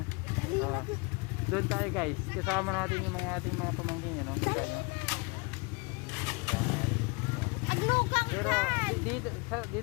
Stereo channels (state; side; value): quieter; right; 30.0 dB